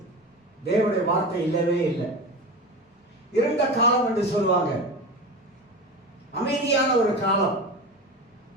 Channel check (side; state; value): both; normal; correlation 0.27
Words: தேவனுடைய வார்த்தை இல்லவே இல்லை. இருண்ட காலம் என்று சொல்லுவாங்க. அமைதியான ஒரு காலம்.